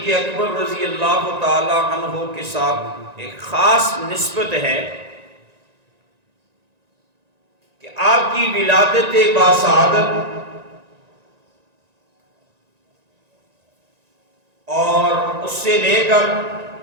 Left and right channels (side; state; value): left; late; 1.9 ms